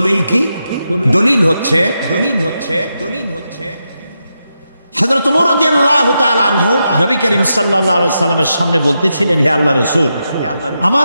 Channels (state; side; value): inverted; both; correlation -0.86